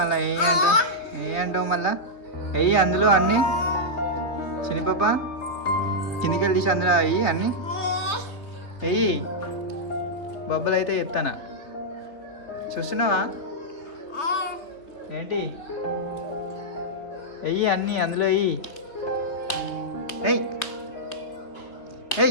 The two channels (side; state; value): right; late; 3.3 ms